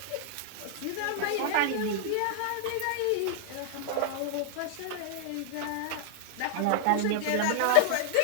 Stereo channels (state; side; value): different; both; correlation -0.01